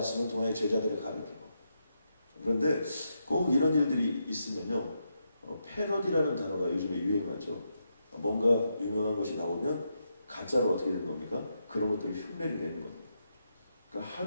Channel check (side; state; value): both; inverted; correlation -0.83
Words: 통해 제자들을 가르치고. 그런데 꼭 이런 일들이 있으면요, 패러디라는 단어가 요즘에 유행하죠. 뭔가 유명한 것이 나오면 가짜로 어떻게 되는 겁니까? 그런 것들을 흉내를 내는 겁니다. 그러니까